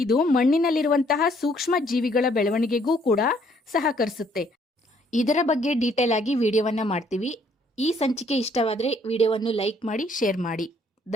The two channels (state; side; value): normal; both; correlation 0.65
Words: ಮಣ್ಣಿನಲ್ಲಿರುವಂತಹ ಸೂಕ್ಷ್ಮ ಜೀವಿಗಳ ಬೆಳವಣಿಗೆಗೂ ಕೂಡ ಸಹಕರಿಸುತ್ತೆ. ಇದರ ಬಗ್ಗೆ ಡೀಟೇಲ್ ಆಗಿ ವಿಡಿಯೋವನ್ನ ಮಾಡ್ತೀವಿ. ಈ ಸಂಚಿಕೆ ಇಷ್ಟವಾದರೆ ವಿಡಿಯೋವನ್ನು ಲೈಕ್ ಮಾಡಿ, ಶೇರ್ ಮಾಡಿ.